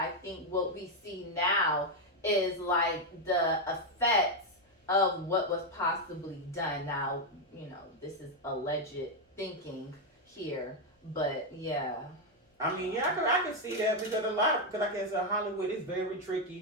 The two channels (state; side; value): normal; both; correlation 0.03